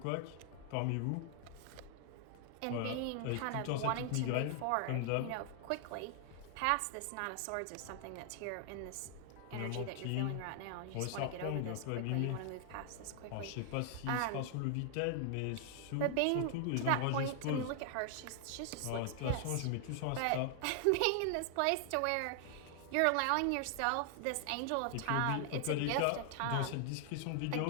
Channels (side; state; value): both; different; correlation 0.00